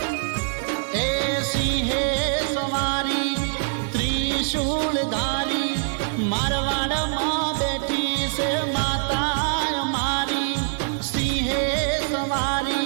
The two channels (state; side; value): silent; left; digital silence